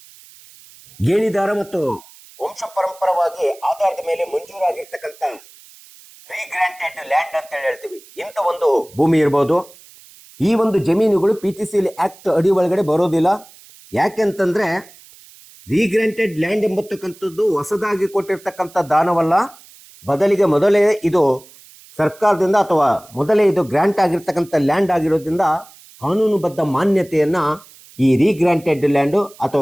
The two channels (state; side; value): noise; right; hiss, 23 dB below the sound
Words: ಗೇಣಿದಾರ ಮತ್ತು ವಂಶ ಪರಂಪರವಾಗಿ ಆಧಾರದ ಮೇಲೆ ಮಂಜೂರಾಗಿರ್ತಕ್ಕಂಥ ರೀಗ್ರಾಂಟೆಡ್ ಲ್ಯಾಂಡ್ ಅಂತ ಹೇಳ್ತೀವಿ, ಇಂಥ ಒಂದು ಭೂಮಿ ಇರ್ಬೋದು. ಈ ಒಂದು ಜಮೀನುಗಳು PTCL ಆಕ್ಟ್ ಅಡಿ ಒಳಗಡೆ ಬರೋದಿಲ್ಲ. ಯಾಕೆಂತಂದ್ರೆ ರೀಗ್ರಾಂಟೆಡ್ ಲ್ಯಾಂಡ್ ಎಂಬತಕ್ಕಂಥದ್ದು ಹೊಸದಾಗಿ ಕೊಟ್ಟಿರ್ತಕ್ಕಂಥ ದಾನವಲ್ಲ, ಬದಲಿಗೆ ಮೊದಲೇ ಇದು ಸರ್ಕಾರದಿಂದ ಅಥವಾ ಮೊದಲೇ ಇದು ಗ್ರಾಂಟ್ ಆಗಿರ್ತಕ್ಕಂಥ ಲ್ಯಾಂಡ್ ಆಗಿರೋದ್ರಿಂದ ಕಾನೂನುಬದ್ಧ ಮಾನ್ಯತೆಯನ್ನ ಈ ರೀಗ್ರಾಂಟೆಡ್ ಲ್ಯಾಂಡು